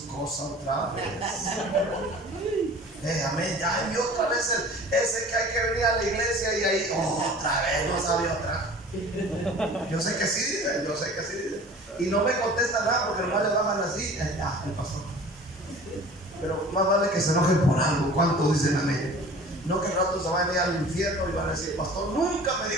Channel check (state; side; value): normal; both; correlation 0.44